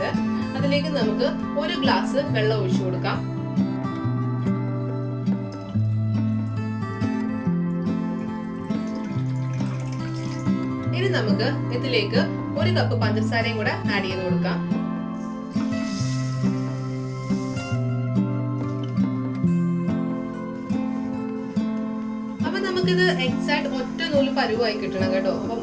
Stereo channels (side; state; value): both; identical; correlation 1.00